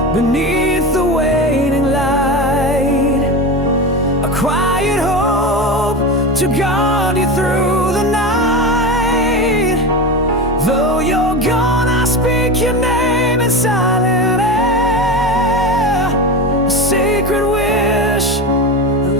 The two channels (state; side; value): normal; both; correlation 0.23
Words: beneath the waning light, a quiet hope to guard you through the night. Though you're gone, I speak your name in silent air, a sacred wish,